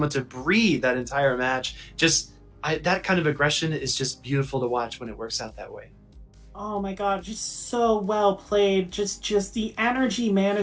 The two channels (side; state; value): both; identical; correlation 1.00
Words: to breathe that entire match. That kind of aggression is just beautiful to watch when it works out that way. Oh my god, just so well played. Just the energy